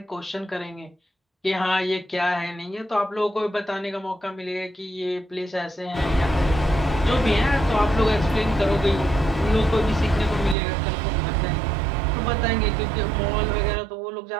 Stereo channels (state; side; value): drops out; left; at 10.6 s